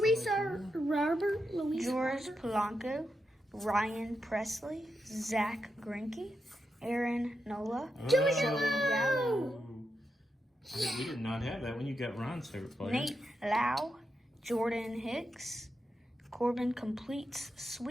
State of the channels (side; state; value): both; normal; correlation 0.86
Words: Robert, George Polanco, Ryan Presley, Zach Greinke, Aaron Nola, Joey Gallo, We did not have that when you got Ron's favorite player. Nate Lau, Jordan Hicks, Corbin Completes